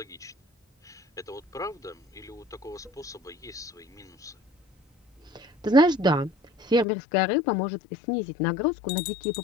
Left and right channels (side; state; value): right; drops out; at 6.9 s